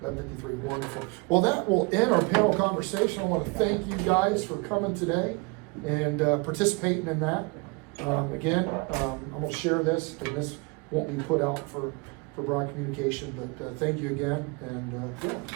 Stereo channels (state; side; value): quieter; left; 28.7 dB